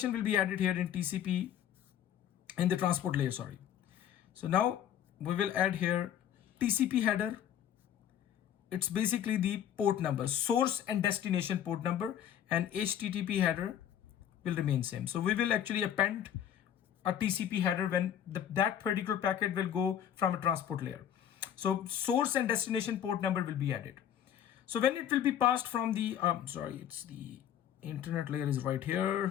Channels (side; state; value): right; quieter; 9.9 dB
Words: will be added here in TCP, in the transport layer, sorry. So now we will add here TCP header. It's basically the port number, source and destination port number, and HTTP header will remain same. So we will actually append a TCP header when that particular packet will go from a transport layer. So source and destination port number will be added. So when it will be passed from the, it's the internet layer is right